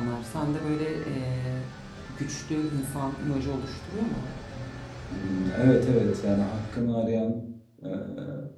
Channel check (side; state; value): both; identical; correlation 1.00